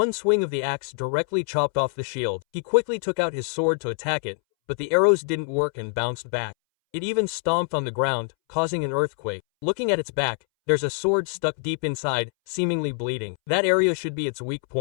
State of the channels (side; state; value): right; silent; 62 dB below the other